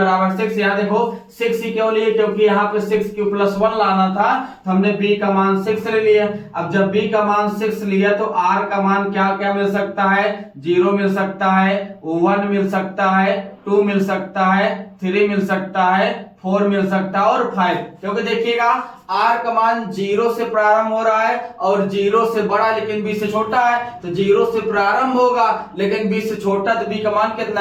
6। यहाँ देखो 6 ही क्यों लिए, क्योंकि यहाँ पे 6q+1 लाना था, तो हमने b का मान 6 ले लिया। अब जब b का मान 6 लिया तो r का मान क्या क्या मिल सकता है, 0 मिल सकता है, 1 मिल सकता है, 2 मिल सकता है, 3 मिल सकता है, 4 मिल सकता है और 5। क्योंकि देखिएगा r का मान 0 से प्रारंभ हो रहा है और 0 से बड़ा लेकिन b से छोटा है। तो 0 से प्रारंभ होगा लेकिन b से छोटा, तो b का मान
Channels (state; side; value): identical; both; correlation 1.00